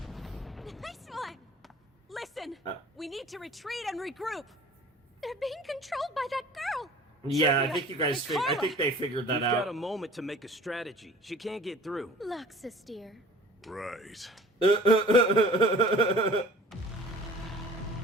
Nice one. Listen, Uh. we need to retreat and regroup. They're being controlled by that girl. Yeah, I Juvia, think you guys. and I Carla. think they figured that We've got a out. moment to make a strategy. She can't get through. Luxus, dear. Right.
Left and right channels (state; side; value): normal; both; correlation 0.46